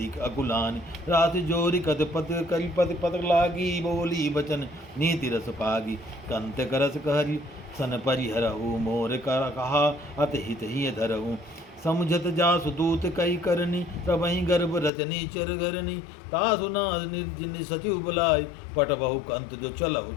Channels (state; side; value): drops out; right; at 14.9 s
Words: अकुलानी। रात जोरी कद पत कलपत पत लागी, बोली बचन नीति रस पागी। कंत करस कहरी सन परिहरहु, मोर कर कहा अतहित ही धरहु। समुझत जासु दूत कई करनी, तबहि गर्भ रचनी चर घरनी। तासु नाज निर्जिन सचिव बुलाय, पट बहु कंत जो चलहु